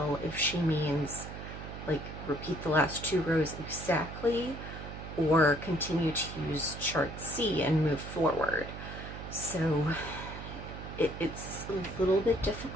if she means like repeat the last 2 rows exactly, or continue to use chart C and move forward. So it's a little bit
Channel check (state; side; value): noise; right; hum, 10 dB below the sound